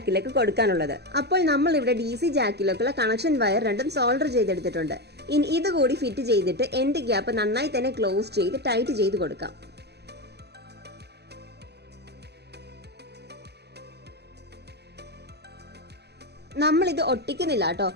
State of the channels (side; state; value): left; late; 0.48 ms